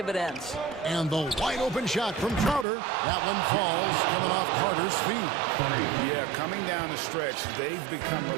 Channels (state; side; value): drops out; left; at 2.7 s